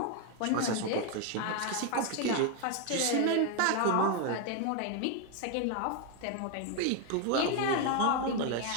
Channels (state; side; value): different; both; correlation 0.01